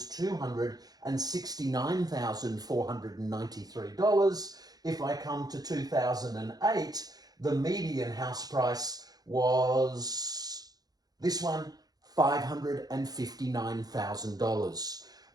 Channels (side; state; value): left; late; 0.19 ms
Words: $269,493. If I come to 2008, the median house price was, this one, $559,000.